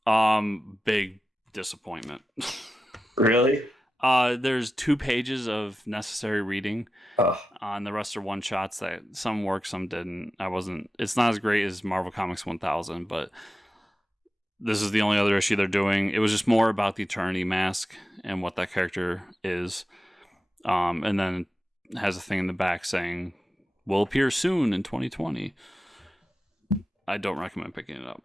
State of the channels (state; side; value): normal; both; correlation 0.92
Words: Big disappointment. Really? There's 2 pages of necessary reading. Oh, And the rest are one shots that some worked, some didn't. It's not as great as Marvel Comics 1000, but this is the only other issue they're doing. It was just more about the Eternity Mask and what that character is. And then it has a thing in the back saying, will appear soon in 2020. I don't recommend picking it up.